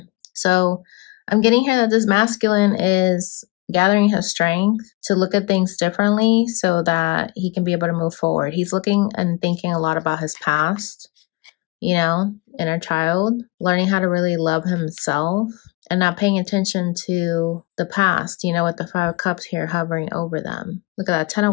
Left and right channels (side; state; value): right; quieter; 23.6 dB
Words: So I'm getting here that this masculine is gathering his strength to look at things differently so that he can be able to move forward. He's looking and thinking a lot about his past, you know, inner child, learning how to really love himself and not paying attention to the past, you know, with the 5 of Cups here hovering over them. Look at that. 10